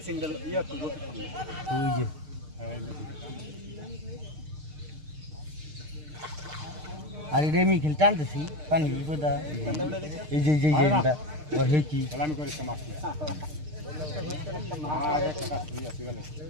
দল ইয়া তো ওই যে আরে রেমি খেল টানতেছি পানি বিপদা এই যে এটা আর হে কি খেলা আমি করে সমাজ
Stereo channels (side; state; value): left; late; 6.6 ms